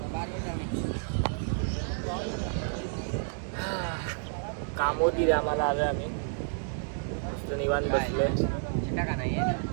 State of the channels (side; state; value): left; silent; digital silence